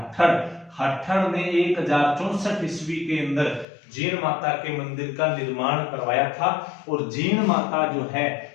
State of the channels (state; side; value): drops out; right; at 3.7 s